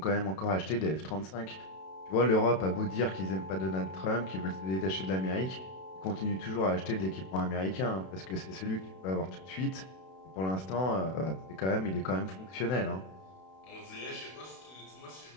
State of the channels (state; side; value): late; right; 32 ms